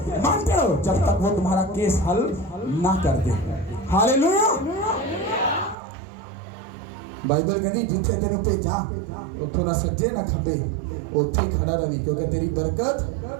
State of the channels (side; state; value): left; drops out; at 5.8 s